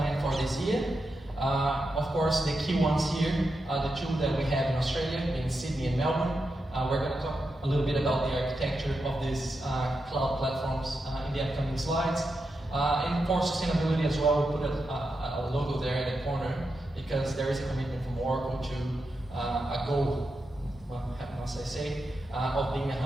for this year. Of course, the key ones here are the 2 that we have in Australia, in Sydney and Melbourne. We're going to talk a little bit about the architecture of these cloud platforms in the upcoming slides. And for sustainability as well, we put a logo there in the corner because there is a commitment from Oracle to a goal, well, must I say, of being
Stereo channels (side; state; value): both; normal; correlation 0.87